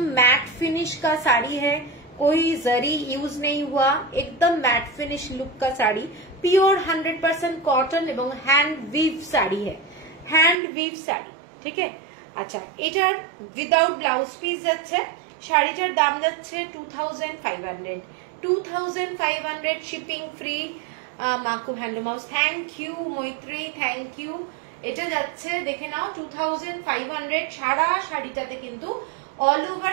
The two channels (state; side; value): drops out; left; at 10.6 s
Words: मैट फिनिश का साड़ी है, कोई जरी यूज नहीं हुआ, एकदम मैट फिनिश लुक का साड़ी, प्योर 100% कॉटन এবং হ্যান্ড উইভ শাড়ি है, ঠিক আছে। আচ্ছা, এটার উইদাউট ব্লাউজ পিস যাচ্ছে, শাড়িটার দাম যাচ্ছে 2500, shipping free. Maku handloom house, thank you Maitri, thank you. এটা যাচ্ছে দেখে নাও 2500। সারা শাড়িটাতে কিন্তু ऑल